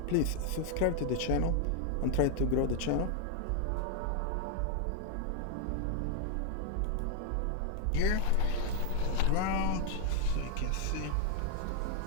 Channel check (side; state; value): both; different; correlation 0.00